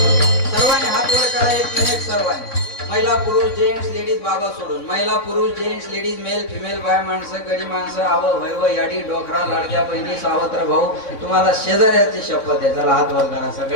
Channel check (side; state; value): right; late; 3.6 ms